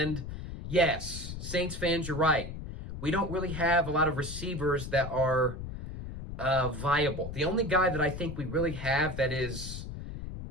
yes, Saints fans, you're right. We don't really have a lot of receivers that are viable. The only guy that I think we really have that is,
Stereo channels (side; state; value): left; noise; rumble, 8 dB below the sound